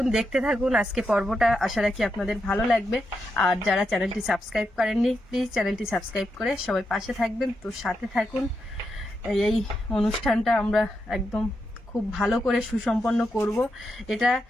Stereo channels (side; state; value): both; normal; correlation 0.84